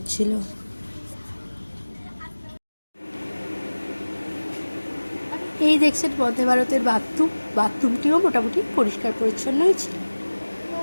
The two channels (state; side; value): inverted; both; correlation -1.00